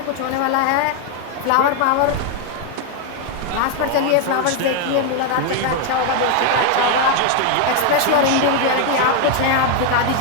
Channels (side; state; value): both; different; correlation 0.01